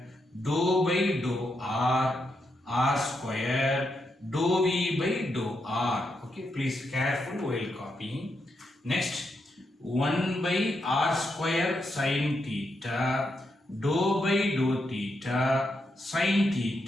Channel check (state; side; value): normal; both; correlation 0.82